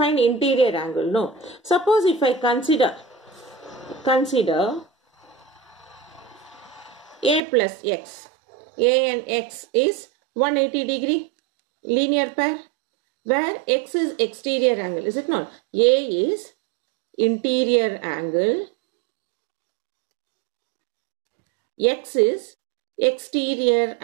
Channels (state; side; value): drops out; left; at 7.4 s